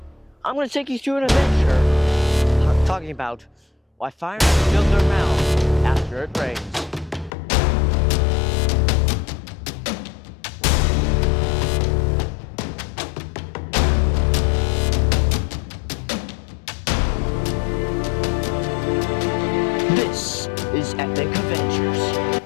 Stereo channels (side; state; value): right; drops out; at 7.3 s